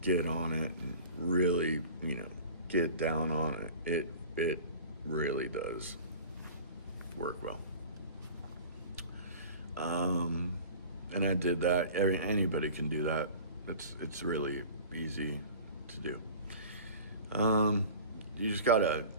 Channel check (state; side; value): inverted; both; correlation -0.40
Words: get on it and really, get down on it really does work well. And I did that. Anybody can do that. It's really easy to do. You just gotta